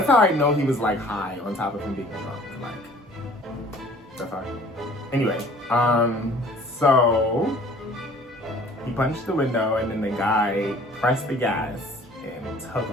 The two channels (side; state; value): both; normal; correlation 0.51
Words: how I know he was like high on top of him being drunk, like. Anyway, so he punched the window, and then the guy pressed the gas and took